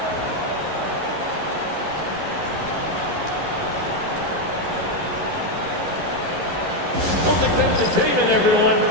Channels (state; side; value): late; left; 11 ms